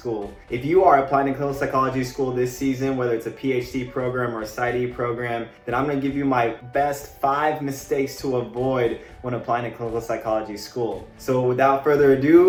If you are applying to clinical psychology school this season, whether it's a PhD program or a PsyD program, then I'm gonna give you my best 5 mistakes to avoid when applying to clinical psychology school. So without further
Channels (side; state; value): both; identical; correlation 1.00